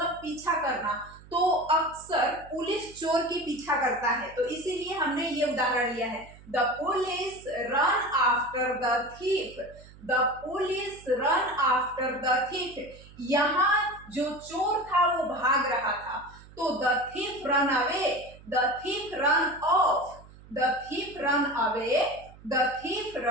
पीछा करना। तो अक्सर पुलिस चोर की पीछा करता है, तो इसीलिए हमने ये उदाहरण लिया है। The police run after the thief, the police run after the thief. यहाँ जो चोर था वो भाग रहा था। तो the thief run away, the thief run off, the thief run away, the thief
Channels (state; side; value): noise; right; hum, 21 dB below the sound